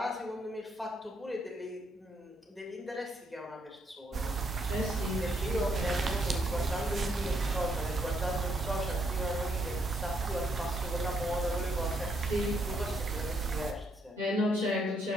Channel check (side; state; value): both; normal; correlation 0.73